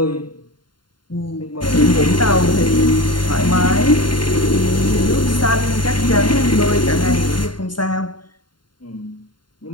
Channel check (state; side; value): late; right; 0.72 ms